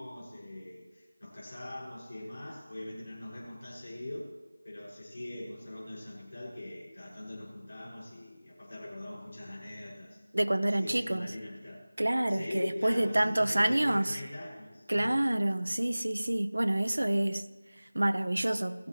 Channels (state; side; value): inverted; both; correlation -0.99